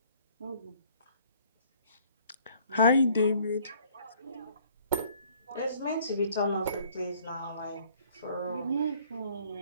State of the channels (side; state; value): both; inverted; correlation -0.59